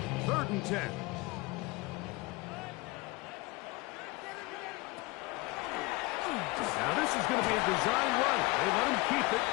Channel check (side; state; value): right; quieter; 23.0 dB